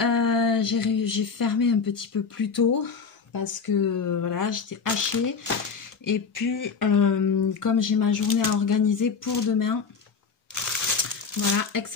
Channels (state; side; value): quieter; right; 5.4 dB